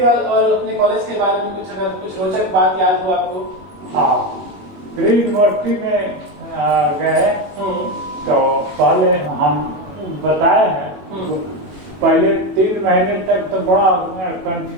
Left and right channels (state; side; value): late; left; 21 ms